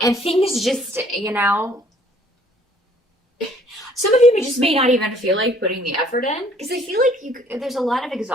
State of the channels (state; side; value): normal; both; correlation 0.59